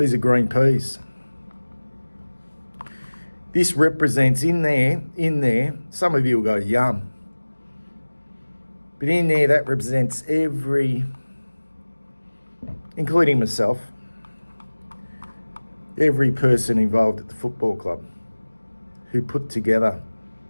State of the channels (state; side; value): inverted; both; correlation -1.00